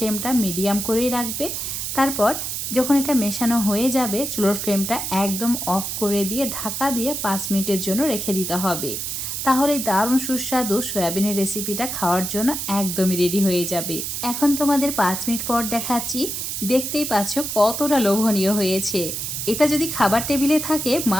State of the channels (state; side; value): noise; right; hiss, 4 dB below the sound